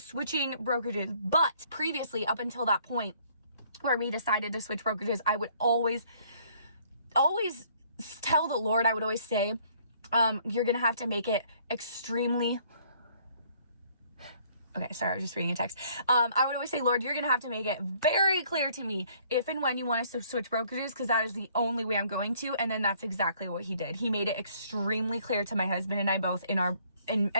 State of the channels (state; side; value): inverted; both; correlation -0.61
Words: brokerages. But previously, up until that point where we decided to switch brokerages, I would always tell the Lord, I would always say, you're going to have to make it extremely Okay, sorry, I was just reading a text. I would always say, Lord, you're going to have to make it very clear to me if and when you want us to switch brokerages, because that is the only way I'm going to. And then that's exactly what he did. He made it extremely clear to my husband and I both in